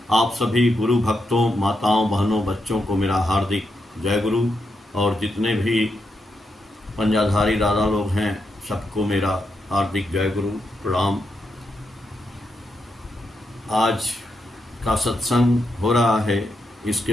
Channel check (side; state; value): both; normal; correlation 0.83